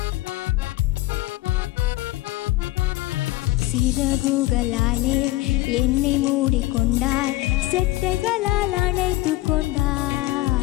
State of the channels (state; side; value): quieter; right; 18.0 dB